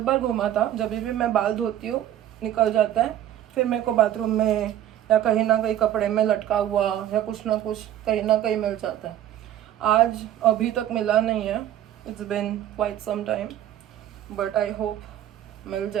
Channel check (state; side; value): quieter; left; 11.8 dB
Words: बार घूमा था. जब भी मैं बाल धोती हूँ निकल जाता है. फिर मेरे को बाथरूम में या कहीं ना कहीं कपड़े में लटका हुआ या कुछ ना कुछ कहीं ना कहीं मिल जाता है. आज अभी तक मिला नहीं है. It's been quite some time, but I hope मिल